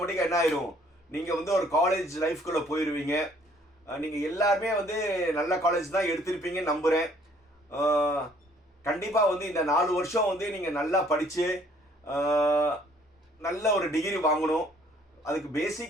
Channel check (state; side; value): normal; both; correlation 0.60